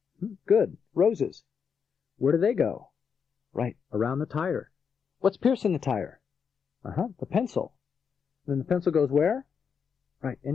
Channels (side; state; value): right; quieter; 6.6 dB